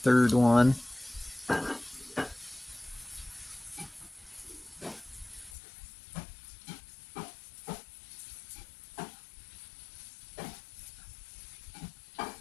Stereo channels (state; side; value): drops out; right; at 5.6 s